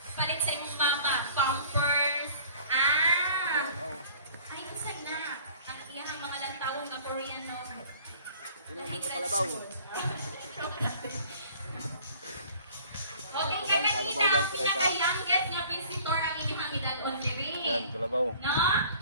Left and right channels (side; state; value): both; inverted; correlation -0.51